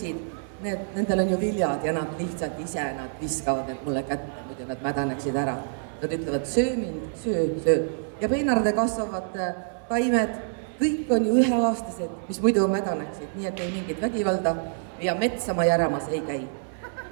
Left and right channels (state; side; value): silent; left; 60 dB below the other